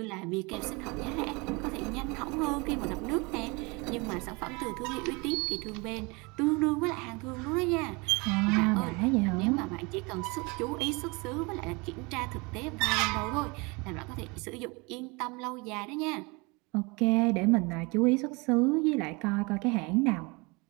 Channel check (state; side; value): quieter; left; 27.4 dB